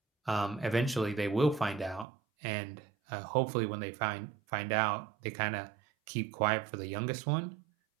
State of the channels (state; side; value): drops out; left; at 2.1 s